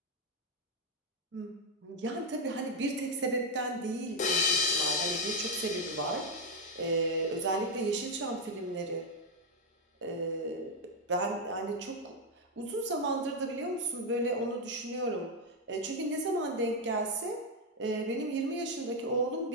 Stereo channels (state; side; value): normal; both; correlation 0.02